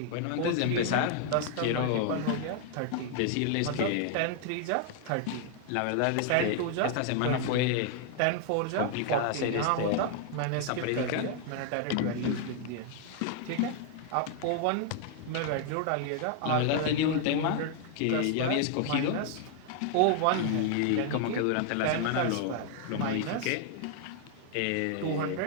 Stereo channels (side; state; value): both; different; correlation 0.00